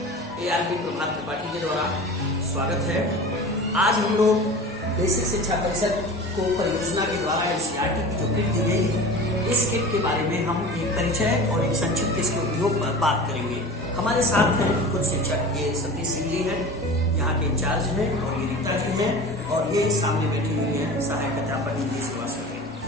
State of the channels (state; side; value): normal; both; correlation 0.35